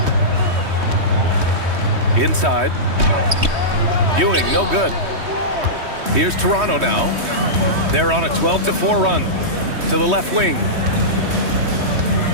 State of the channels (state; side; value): late; left; 3.2 ms